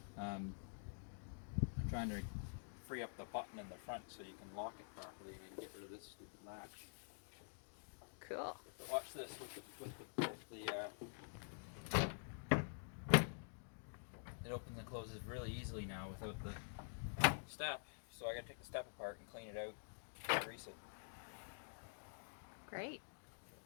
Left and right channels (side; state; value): right; silent; digital silence